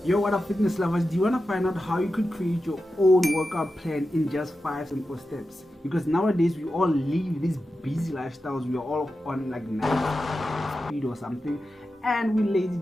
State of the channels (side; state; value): both; normal; correlation 0.91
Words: Yo, what up, fitness lovers? Do you want to find out how you could create your own workout plan in just 5 simple steps? Because nowadays we all live these busy lifestyles. We are all on like 9 speed or something, and we're lazy